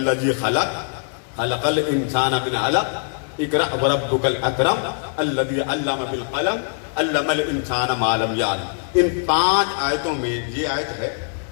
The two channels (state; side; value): silent; right; 64 dB below the other